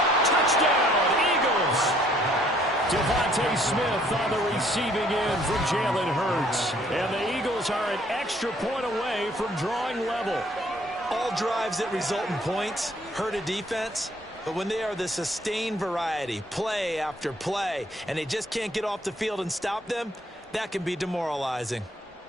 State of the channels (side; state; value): both; normal; correlation 0.62